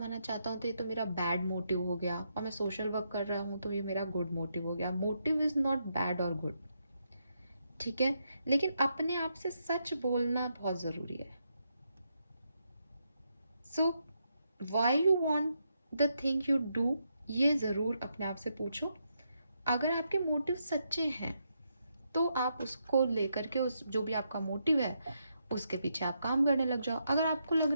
चाहता हूँ तो ये तो मेरा बैड मोटिव हो गया, और मैं सोशल वर्क कर रहा हूँ तो ये मेरा गुड मोटिव हो गया। मोटिव इज़ नॉट बैड और गुड, ठीक है। लेकिन अपने आप से सच बोलना बहुत ज़रूरी है। So why you want the thing you do, ये ज़रूर अपने आप से पूछो। अगर आपके मोटिव सच्चे हैं तो आप उसको लेकर के, उस जो भी आपका मोटिव है उसके पीछे आप काम करने लग जाओ। अगर आपको लग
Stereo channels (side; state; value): both; inverted; correlation -0.80